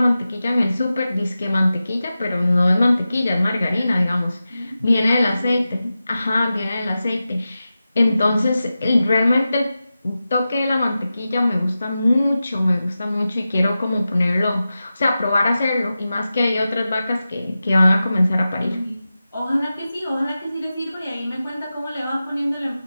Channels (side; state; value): both; inverted; correlation -0.93